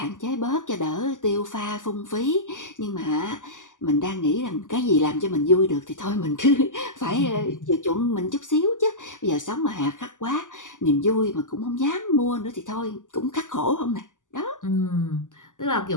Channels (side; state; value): right; late; 0.87 ms